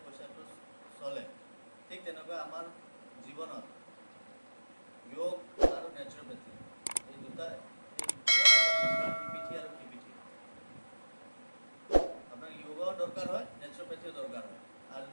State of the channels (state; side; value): inverted; both; correlation -1.00